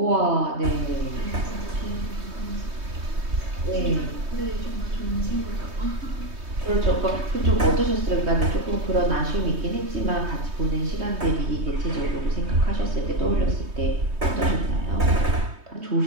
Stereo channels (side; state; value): left; late; 3.2 ms